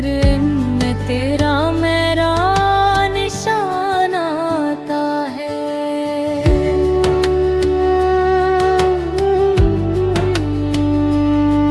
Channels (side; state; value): both; identical; correlation 1.00